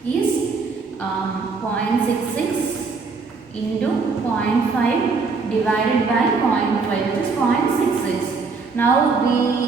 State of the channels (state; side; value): quieter; left; 4.5 dB